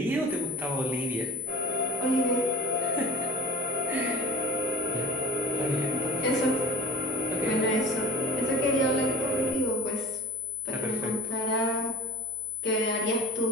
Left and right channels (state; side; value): noise; left; hum, 30 dB below the sound